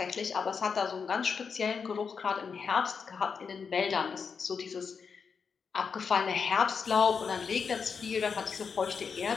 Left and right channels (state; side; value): quieter; right; 5.8 dB